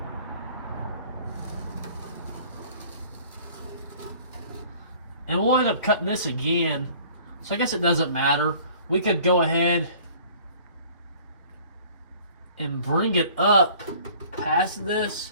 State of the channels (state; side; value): inverted; both; correlation -0.51